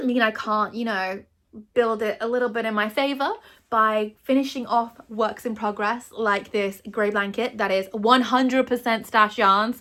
mean I can't, build it a little bit in my favor by finishing off works in progress like this grey blanket that is 100% stash yarn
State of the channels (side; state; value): both; identical; correlation 1.00